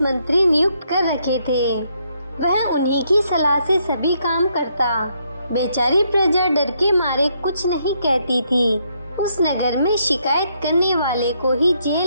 मंत्री नियुक्त कर रखे थे। वह उन्हीं की सलाह से सभी काम करता। बेचारी प्रजा डर के मारे कुछ नहीं कहती थी। उस नगर में शिकायत करने वाले को ही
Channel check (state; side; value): inverted; both; correlation -0.74